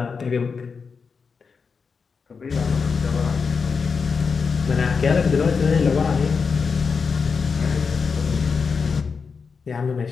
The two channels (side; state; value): right; quieter; 5.3 dB